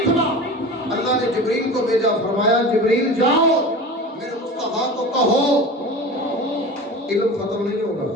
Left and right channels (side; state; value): both; normal; correlation 0.33